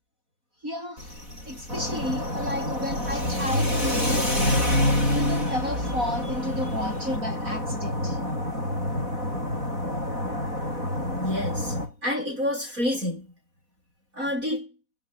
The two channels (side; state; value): left; late; 4.1 ms